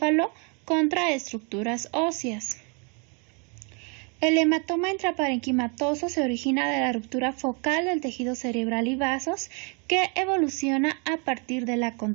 contra estructuras óseas. El hematoma intraparenquimatoso se origina de la ruptura focal del tejido cerebral y vasos que evoluciona a partir de la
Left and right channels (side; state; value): left; quieter; 34.8 dB